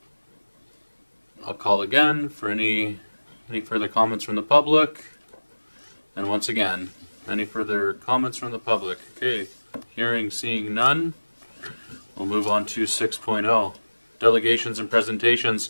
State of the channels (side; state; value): both; inverted; correlation -1.00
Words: I'll call again for any further comments from the public. And once again, any further comments from the public? Okay, hearing, seeing none. We'll move on to 6.0, delegations and presentations.